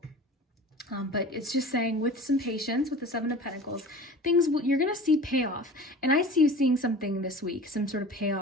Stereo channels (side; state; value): both; normal; correlation 0.39